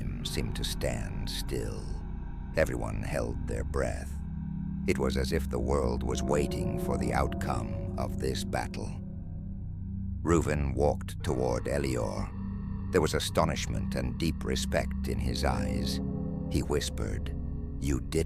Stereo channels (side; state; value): both; identical; correlation 1.00